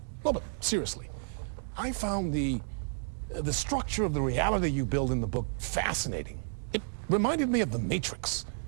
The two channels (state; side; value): silent; left; digital silence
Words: No, but seriously, I found the structure of the reality you build in the book fascinating. It reminded me of The Matrix.